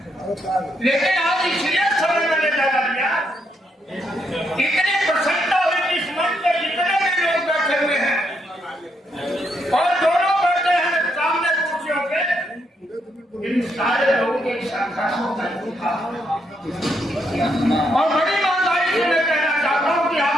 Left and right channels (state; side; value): normal; both; correlation 0.77